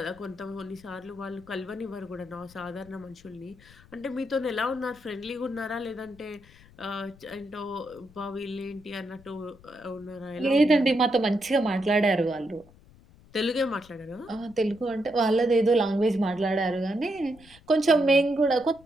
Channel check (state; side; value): noise; left; rumble, 25 dB below the sound